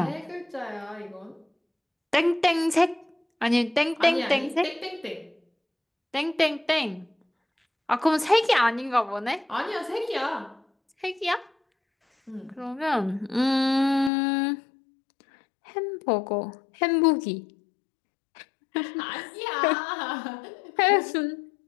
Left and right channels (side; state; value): right; drops out; at 14.1 s